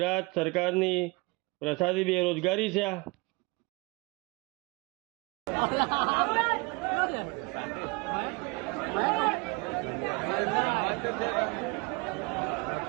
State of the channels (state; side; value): quieter; left; 26.5 dB